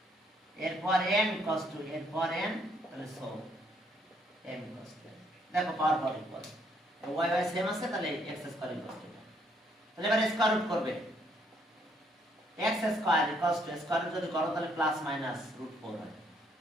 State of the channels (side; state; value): both; normal; correlation 0.70